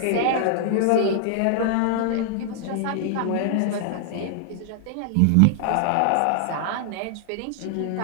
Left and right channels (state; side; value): different; both; correlation 0.00